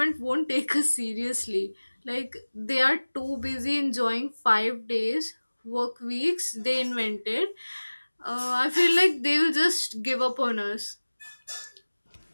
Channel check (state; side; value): inverted; both; correlation -1.00